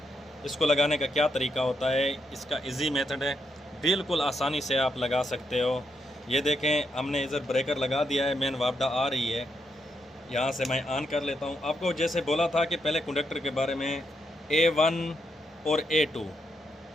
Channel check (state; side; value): normal; both; correlation 0.80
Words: इसको लगाने का क्या तरीका होता है। इसका इजी मेथड है, बिल्कुल आसानी से आप लगा सकते हो। ये देखें, हमने इधर ब्रेकर लगा दिया है, मेन वापडा आ रही है। यहाँ से मैं ऑन कर लेता हूँ। आपको जैसे बोला था कि पहले कंडक्टर के बारे में A1 और A2,